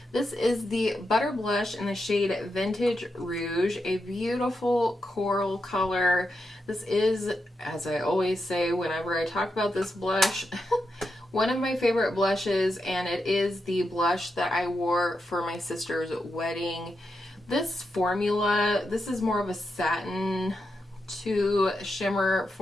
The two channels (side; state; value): both; normal; correlation 0.86